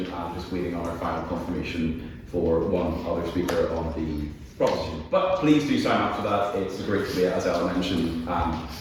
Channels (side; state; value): both; identical; correlation 1.00